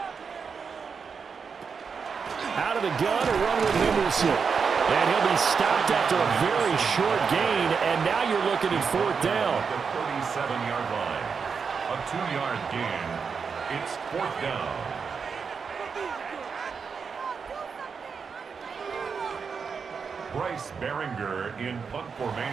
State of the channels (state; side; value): quieter; left; 5.8 dB